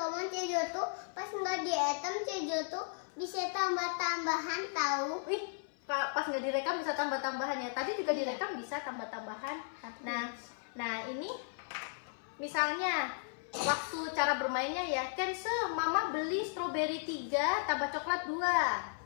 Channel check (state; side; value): silent; right; 54 dB below the other